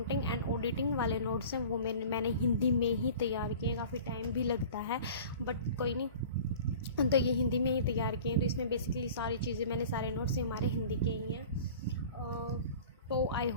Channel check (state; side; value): inverted; both; correlation -0.42